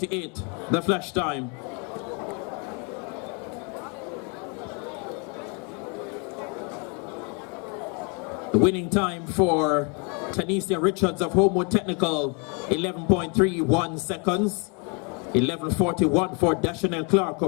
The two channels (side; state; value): right; quieter; 34.7 dB